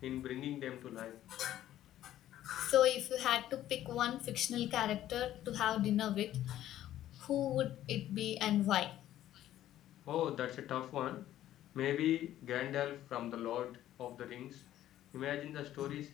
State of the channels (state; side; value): quieter; right; 12.8 dB